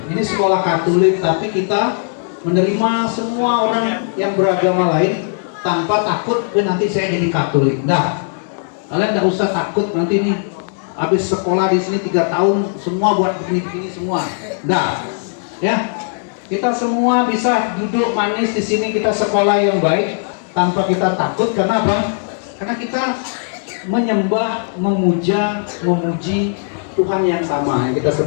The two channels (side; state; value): right; silent; digital silence